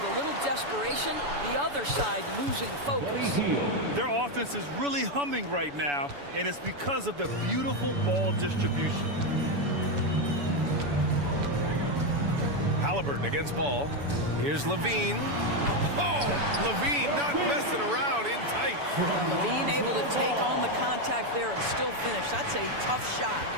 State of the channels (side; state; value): left; late; 7.0 ms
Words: a little desperation, the other side losing focus. Their offense is really humming right now, and it's because of the beautiful ball distribution. Halliburton against ball. Here's Levine. Oh, Levine not messing around, in tight. Well, Levine able to take on the contact there and still finish. That's a tough shot.